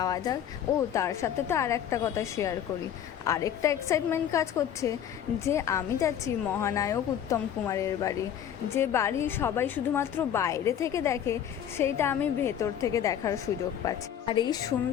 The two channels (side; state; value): right; quieter; 9.6 dB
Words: যাক। ও তার সাথে তো আর একটা কথা শেয়ার করি, আরেকটা এক্সাইটমেন্ট কাজ করছে যে আমি যাচ্ছি মহানায়ক উত্তম কুমারের বাড়ি। যে বাড়ি সবাই শুধুমাত্র বাইরে থেকে দেখে, সেইটা আমি ভেতর থেকে দেখার সুযোগ পাচ্ছি। আর এই